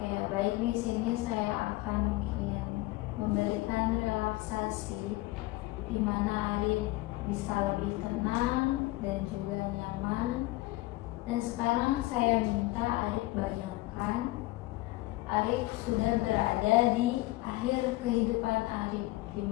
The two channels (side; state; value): right; quieter; 19.8 dB